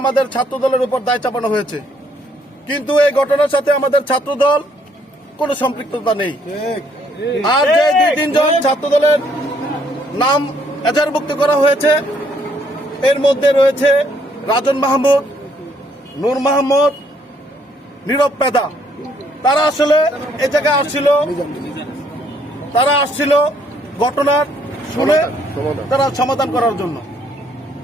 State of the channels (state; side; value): normal; both; correlation 0.68